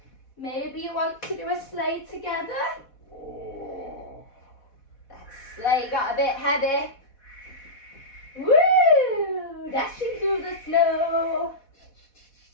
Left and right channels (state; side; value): late; right; 4.1 ms